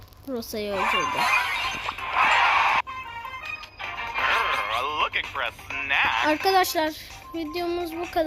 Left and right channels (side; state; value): both; identical; correlation 1.00